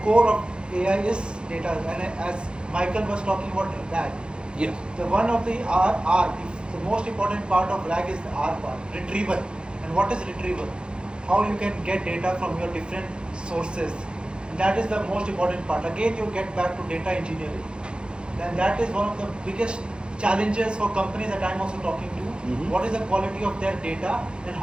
core of AI is data, and as Michael was talking about RAG, yes. the one of the R, the most important part of RAG is the R part, retrieval. And what is retrieval? How you can get data from your different sources. And that is the most important part. Again, you get back to data engineering. And that is one of the biggest challenges for companies that I'm also talking to. Mm-hmm. What is the quality of their data and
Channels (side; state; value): left; late; 0.052 ms